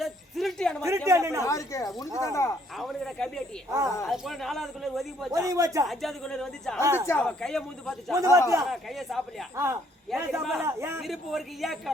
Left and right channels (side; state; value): both; normal; correlation 0.66